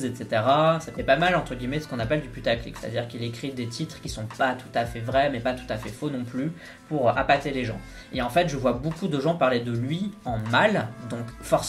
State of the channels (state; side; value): identical; both; correlation 1.00